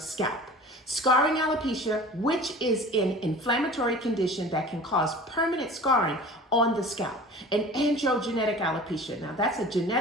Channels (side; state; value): both; normal; correlation 0.41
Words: Scarring alopecia, which is an inflammatory condition that can cause permanent scarring on the scalp. And androgenetic alopecia, now that's a